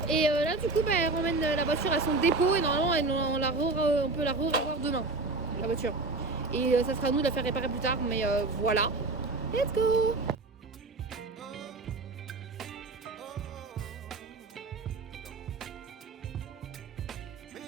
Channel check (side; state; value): left; quieter; 3.4 dB